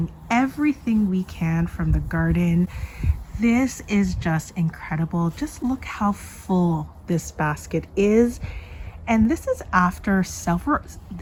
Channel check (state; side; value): identical; both; correlation 1.00